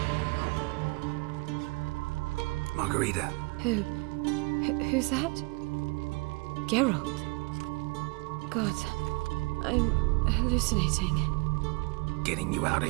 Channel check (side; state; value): left; quieter; 27.4 dB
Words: Margarita. Who's that? Geralt. God, I'm hallucinating. Getting you out of